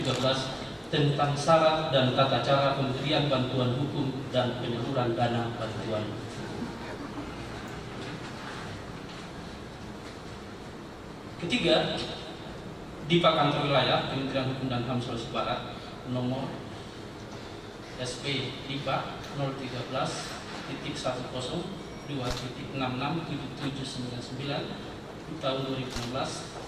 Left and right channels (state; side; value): identical; both; correlation 1.00